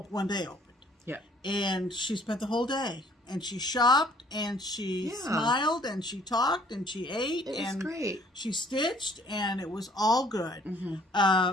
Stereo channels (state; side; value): normal; both; correlation 0.58